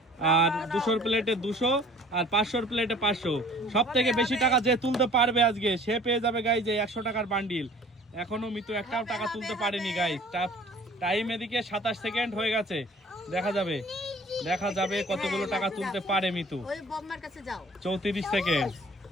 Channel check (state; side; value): normal; both; correlation 0.50